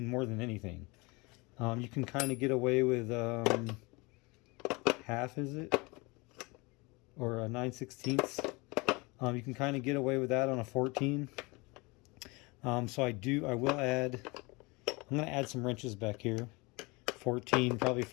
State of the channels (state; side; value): quieter; right; 26.1 dB